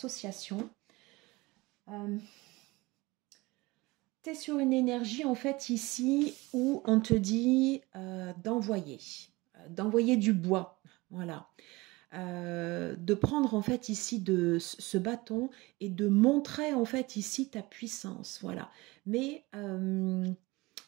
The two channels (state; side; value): quieter; left; 22.2 dB